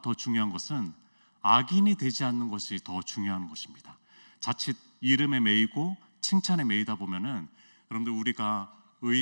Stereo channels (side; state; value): both; inverted; correlation -1.00